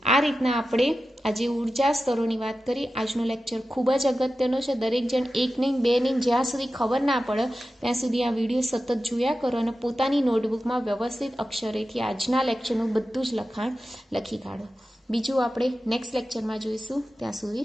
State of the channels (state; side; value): normal; both; correlation 0.93